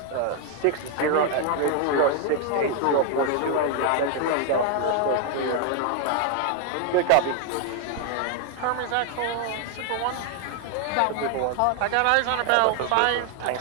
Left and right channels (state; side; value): different; both; correlation 0.00